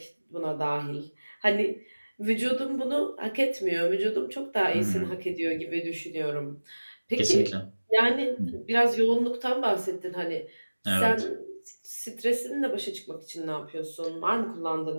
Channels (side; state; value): both; inverted; correlation -1.00